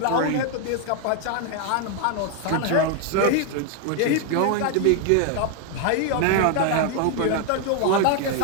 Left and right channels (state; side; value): different; both; correlation 0.00